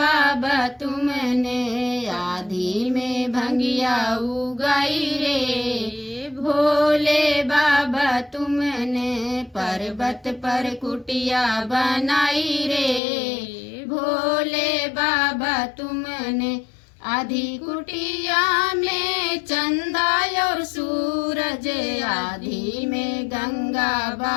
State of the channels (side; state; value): right; drops out; at 13.0 s